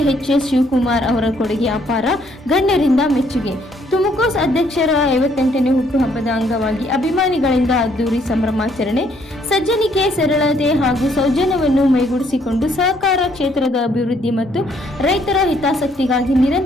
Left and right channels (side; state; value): both; normal; correlation 0.67